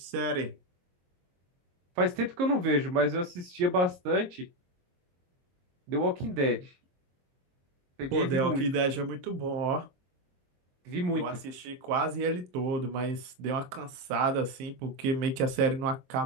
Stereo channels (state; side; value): late; left; 22 ms